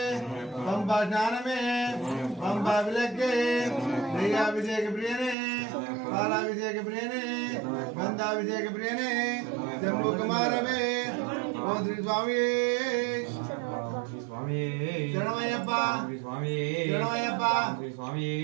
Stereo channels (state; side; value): drops out; left; at 5.4 s